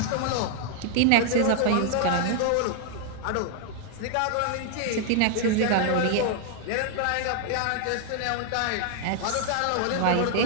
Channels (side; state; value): both; different; correlation 0.00